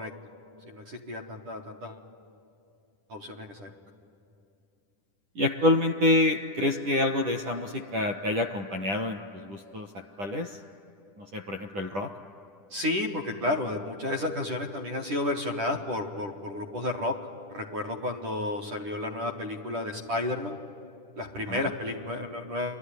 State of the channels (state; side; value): late; left; 10 ms